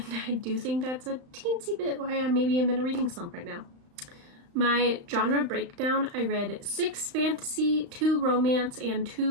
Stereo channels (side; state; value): left; late; 35 ms